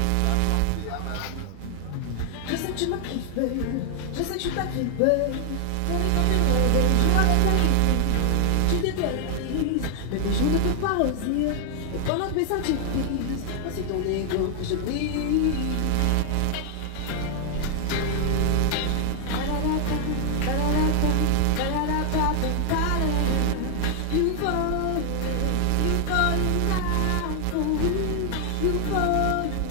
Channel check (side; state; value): both; different; correlation 0.00